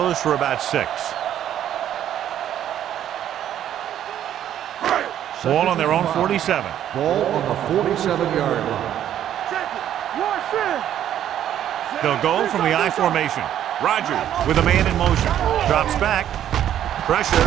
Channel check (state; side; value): quieter; left; 10.9 dB